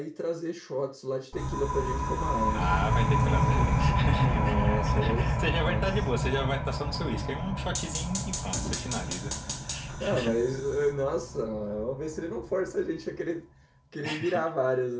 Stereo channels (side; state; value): both; identical; correlation 1.00